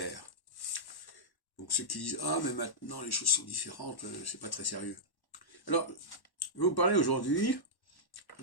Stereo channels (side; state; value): right; late; 1.1 ms